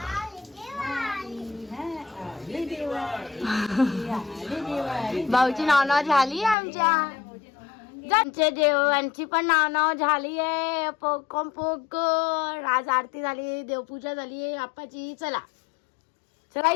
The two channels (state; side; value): drops out; right; at 6.6 s